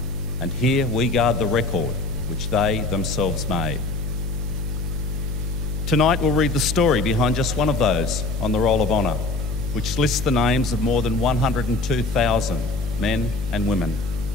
and here we guard the record which they themselves made. Tonight we'll read the story behind just one of those on the Roll of Honour, which lists the names of more than 102,000 men and women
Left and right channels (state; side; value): noise; left; hum, 4 dB below the sound